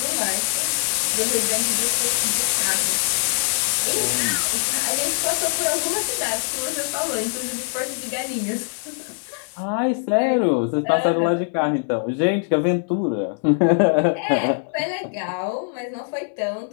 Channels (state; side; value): silent; right; digital silence